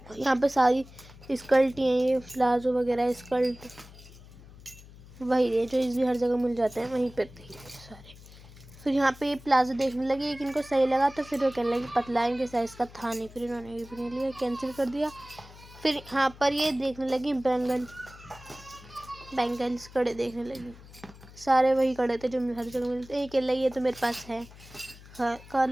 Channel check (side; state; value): left; noise; hum, 20 dB below the sound